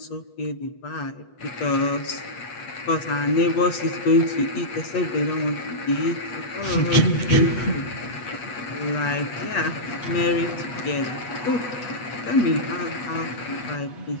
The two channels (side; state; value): right; late; 8.2 ms